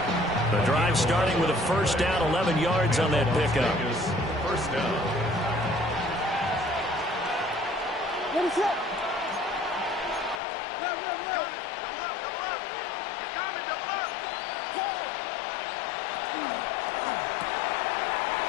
The drive starting with a first down, 11 yards on that pickup. First down. What is that?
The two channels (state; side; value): drops out; right; at 10.4 s